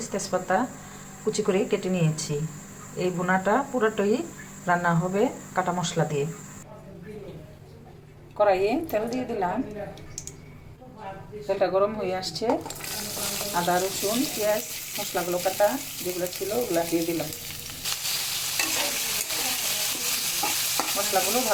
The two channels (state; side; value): identical; both; correlation 1.00